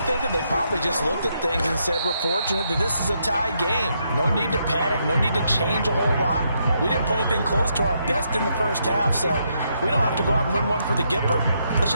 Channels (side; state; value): both; inverted; correlation -0.78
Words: that they probably just looked at things and said, we're fortunate that this is a tie game. No need to panic. No need to change a whole lot. We didn't play anything close to our best in the first half, so we don't have to go out and win one for the Gipper. Let's